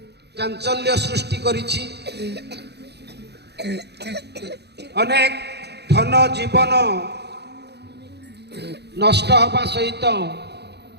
चांचल्य सृष्टि करिछि। अनेक धन जीवन नष्ट हवा सहित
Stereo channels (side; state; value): left; late; 0.48 ms